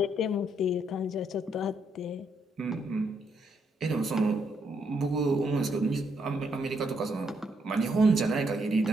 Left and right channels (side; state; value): both; normal; correlation 0.75